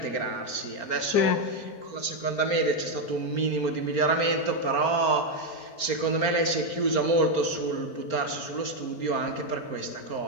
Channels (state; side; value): late; right; 4.4 ms